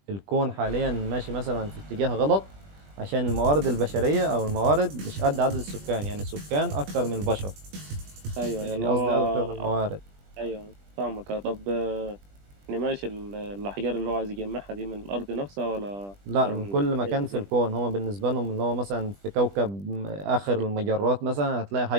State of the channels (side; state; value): left; late; 20 ms